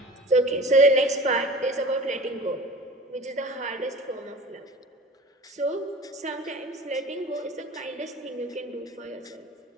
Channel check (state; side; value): normal; both; correlation 0.39